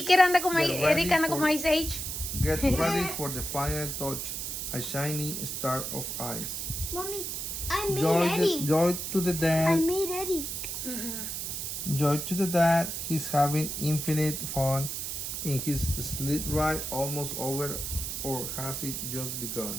allí que anda como Get ready Eric anda como for- Ice Age. Get ready for the final touch, a shiny star of ice. Mommy, I made Joy Eddie. to the I dad. made Eddie. Joy to the dad. He's having infinite fun in his sled ride, almost over, or has it just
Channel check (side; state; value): right; noise; hiss, 4 dB below the sound